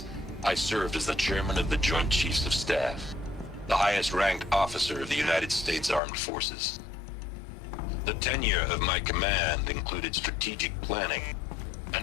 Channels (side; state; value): right; drops out; at 6.0 s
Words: I served as the chairman of the Joint Chiefs of Staff, the highest-ranked officer of the United States Armed Forces. The tenure of my command included strategic planning